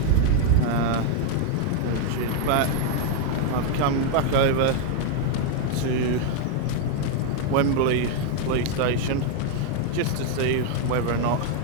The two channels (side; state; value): both; different; correlation 0.00